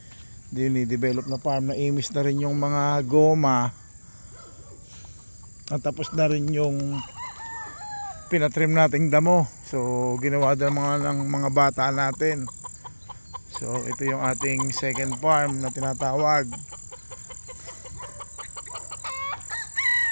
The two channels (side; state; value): both; inverted; correlation -1.00